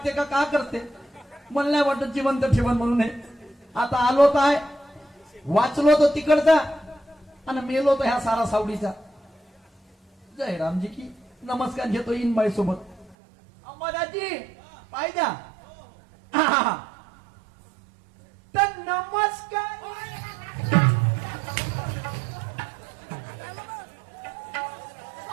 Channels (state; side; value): drops out; left; at 13.2 s